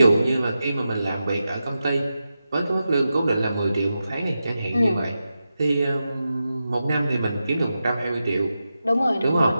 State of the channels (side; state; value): both; inverted; correlation -0.90